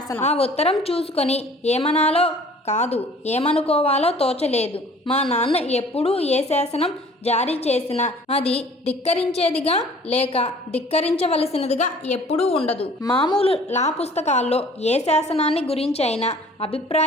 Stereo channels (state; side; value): normal; both; correlation 0.51